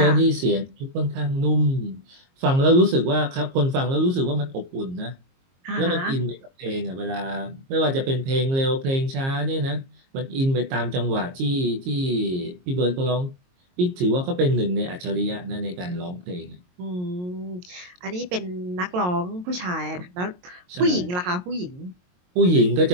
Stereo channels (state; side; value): late; left; 22 ms